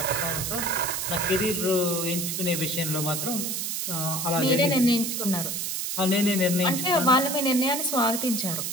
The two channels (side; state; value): right; noise; hiss, 2 dB below the sound